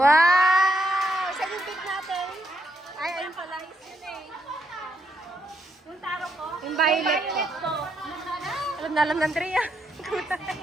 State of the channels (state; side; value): normal; both; correlation 0.77